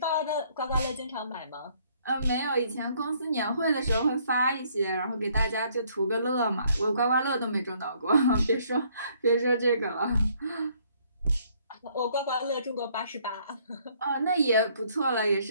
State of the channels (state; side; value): inverted; both; correlation -0.65